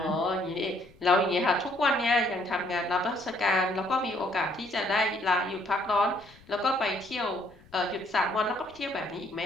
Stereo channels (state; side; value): noise; left; rumble, 26 dB below the sound